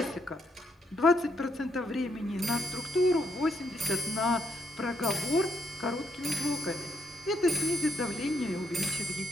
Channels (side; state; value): both; normal; correlation 0.73